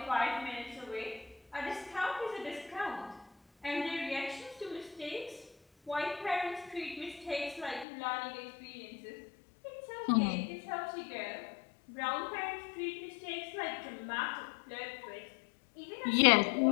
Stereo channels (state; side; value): drops out; right; at 7.9 s